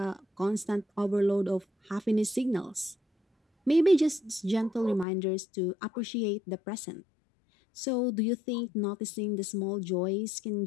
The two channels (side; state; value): right; drops out; at 5.1 s